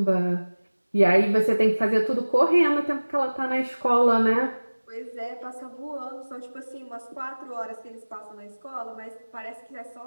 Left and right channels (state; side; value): inverted; both; correlation -1.00